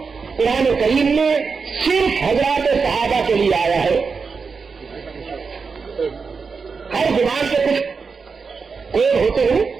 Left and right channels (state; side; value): quieter; left; 5.1 dB